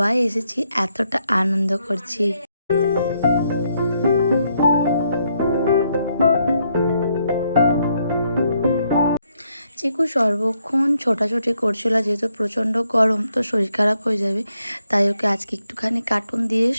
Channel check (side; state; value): both; inverted; correlation -0.76